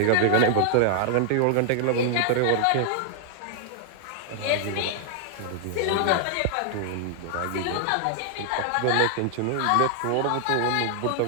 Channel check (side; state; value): both; different; correlation 0.00